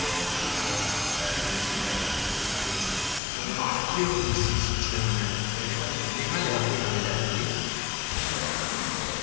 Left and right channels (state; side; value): drops out; right; at 3.2 s